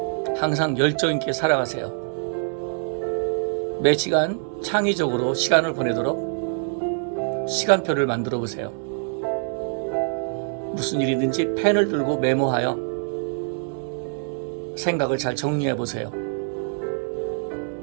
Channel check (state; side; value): silent; left; 60 dB below the other